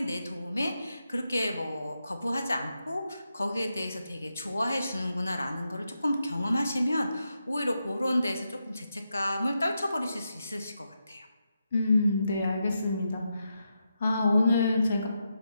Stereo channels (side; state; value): both; inverted; correlation -0.85